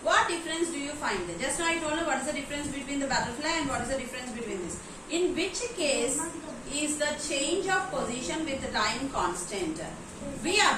what difference do you find? Just now I told you what is the difference between the butterfly and what is the difference between this. In which case is the change of position with the time constant? We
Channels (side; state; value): both; identical; correlation 1.00